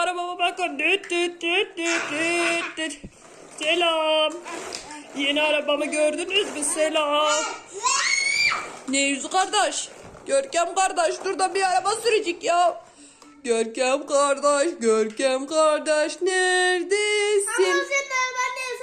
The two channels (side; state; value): both; identical; correlation 1.00